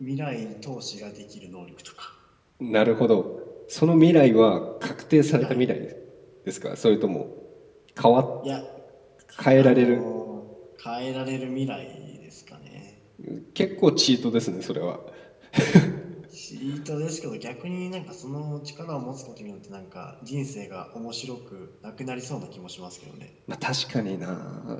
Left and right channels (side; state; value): both; identical; correlation 1.00